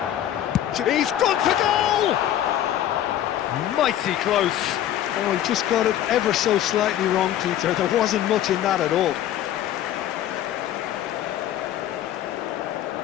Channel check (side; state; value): right; quieter; 11.8 dB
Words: He's gone for goal! Mighty close. Oh, he just got it ever so slightly wrong, Peter. There wasn't much in that at all.